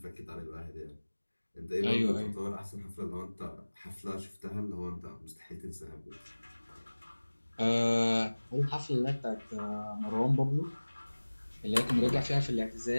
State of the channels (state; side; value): inverted; both; correlation -1.00